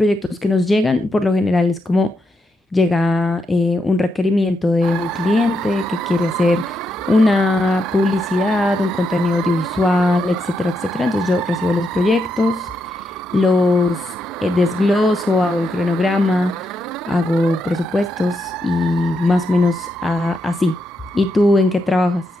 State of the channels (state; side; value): normal; both; correlation 0.81